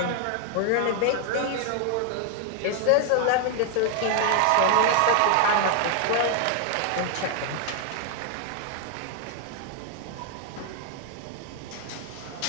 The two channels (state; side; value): different; both; correlation 0.00